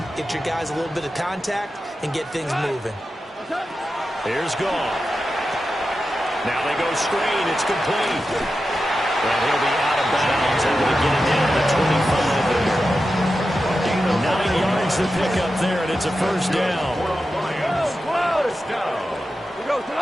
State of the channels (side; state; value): both; normal; correlation 0.91